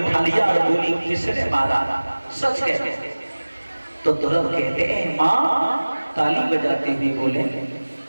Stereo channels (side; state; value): both; inverted; correlation -1.00